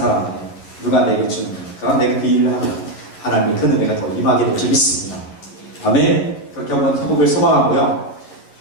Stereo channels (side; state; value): right; late; 11 ms